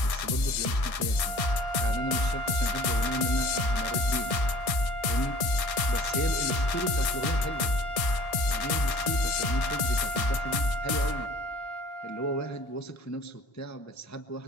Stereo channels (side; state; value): right; late; 1.6 ms